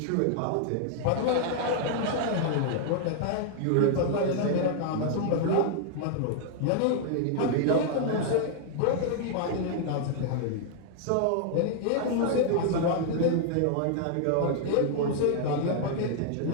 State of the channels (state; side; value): different; both; correlation -0.01